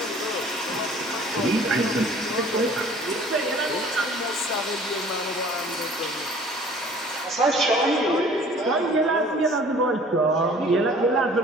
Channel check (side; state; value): both; normal; correlation 0.51